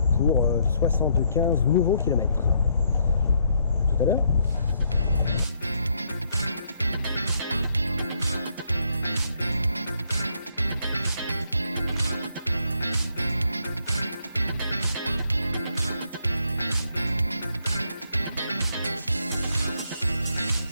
pour 75 nouveaux kilomètres. Tout à l'heure.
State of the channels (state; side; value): inverted; both; correlation -0.72